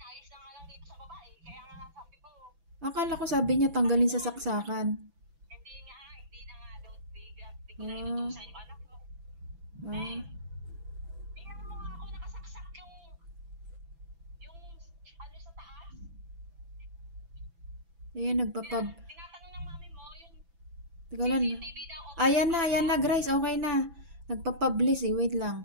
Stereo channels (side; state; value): left; late; 6.0 ms